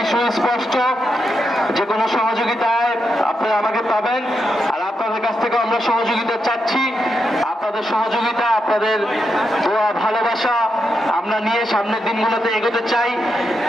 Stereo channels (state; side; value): normal; both; correlation 0.84